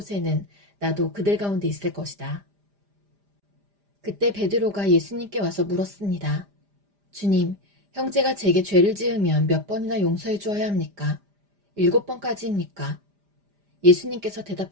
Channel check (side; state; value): left; late; 5.0 ms